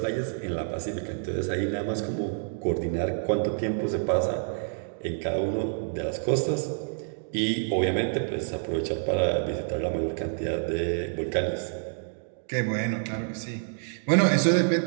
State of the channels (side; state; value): left; silent; digital silence